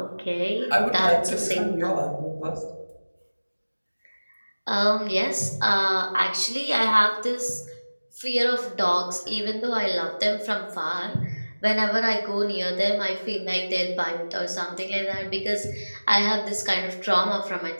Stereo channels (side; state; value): both; inverted; correlation -1.00